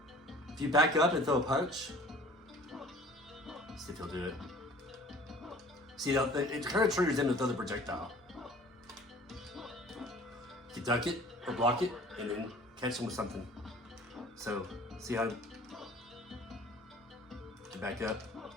If you back up and throw a punch, see if he'll do it. See, it kind of triggers him to throw the projectile. You duck it or block it and then catch him with something. So, see how to back up.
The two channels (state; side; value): normal; both; correlation 0.48